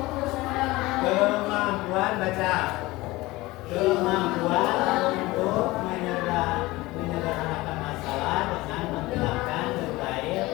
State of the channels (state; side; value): quieter; right; 20.1 dB